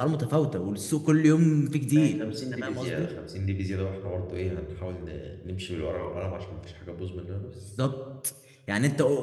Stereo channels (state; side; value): identical; both; correlation 1.00